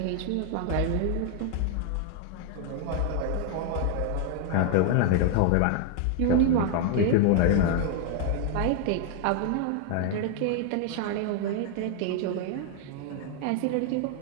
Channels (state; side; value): different; both; correlation 0.00